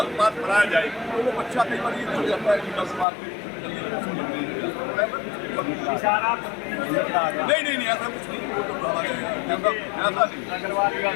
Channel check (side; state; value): right; drops out; at 3.1 s